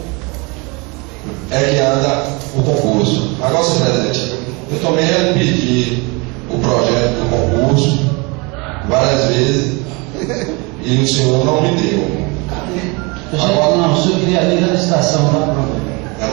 é que anda o concurso. Agora, senhor presidente, eu também pedi o projeto do concurso várias vezes e o senhor não me deu. Agora, não, o senhor queria ler a licitação, tá pronto. Já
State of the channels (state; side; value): quieter; left; 28.1 dB